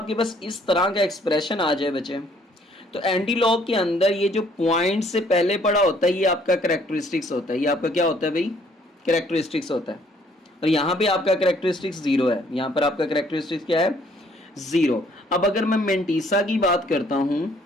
पास इस तरह का एक्सप्रेशन आ जाए बच्चे, तो एंटी लॉग के अंदर ये जो पॉइंट से पहले पड़ा होता है ये आपका करेक्टरिस्टिक्स होता है। ये आपका क्या होता है भाई, करेक्टरिस्टिक्स होता है। और यहाँ पे आपका करेक्टरिस्टिक्स 0 है, यहाँ पर आपका करेक्टरिस्टिक्स क्या है, 0। अब अगर मैं मेंटीसा की बात करता हूँ,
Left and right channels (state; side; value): normal; both; correlation 0.63